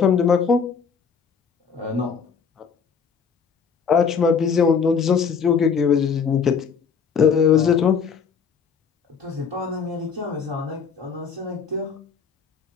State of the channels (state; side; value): quieter; right; 6.2 dB